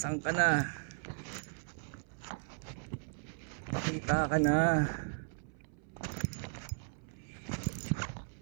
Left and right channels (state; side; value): silent; left; 54 dB below the other